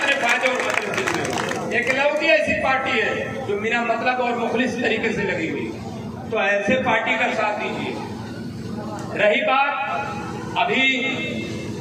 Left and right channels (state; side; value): identical; both; correlation 1.00